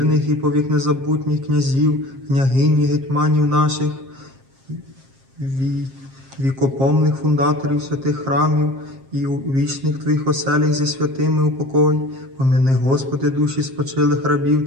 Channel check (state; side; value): late; left; 7.5 ms